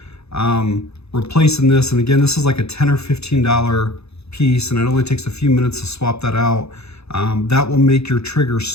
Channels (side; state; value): right; late; 0.79 ms